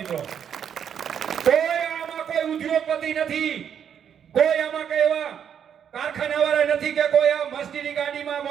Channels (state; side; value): quieter; left; 8.4 dB